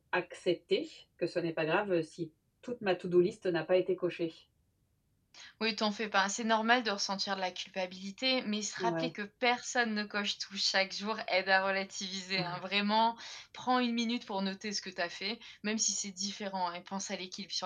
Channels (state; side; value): identical; both; correlation 1.00